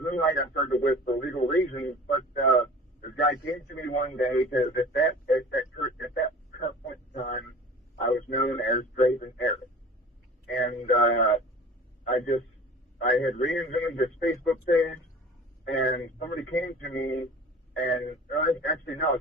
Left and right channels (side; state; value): both; normal; correlation 0.42